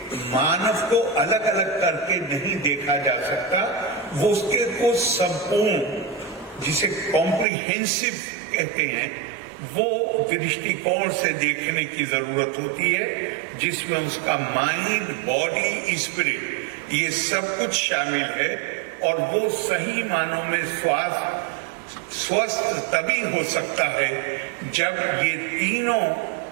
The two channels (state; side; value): drops out; left; at 7.5 s